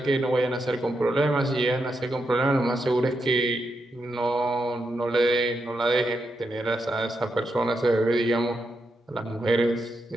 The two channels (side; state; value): both; normal; correlation 0.84